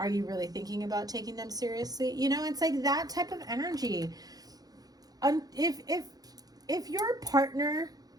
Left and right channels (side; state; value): left; late; 0.18 ms